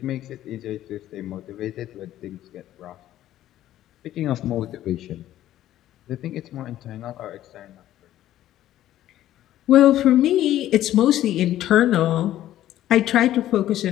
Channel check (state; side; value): quieter; right; 13.1 dB